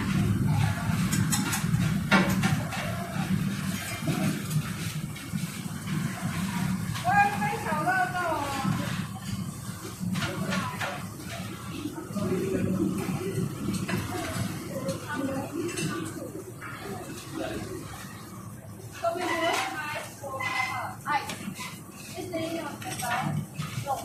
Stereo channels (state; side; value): identical; both; correlation 1.00